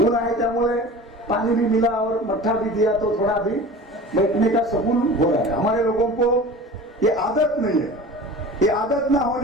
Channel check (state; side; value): normal; both; correlation 0.37